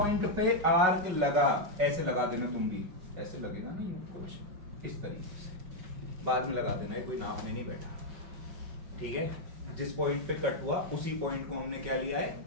पे आर्क लगा, ऐसे लगा देना तुम भी, ऐसे लगेगा नहीं कुछ इस तरीके से, बाद में लगा देना, कोई नाप में नहीं बैठा, ठीक है? जिस पॉइंट पे कट हुआ उसी पॉइंट को हमने क्या लिया है?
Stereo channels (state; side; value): late; left; 5.4 ms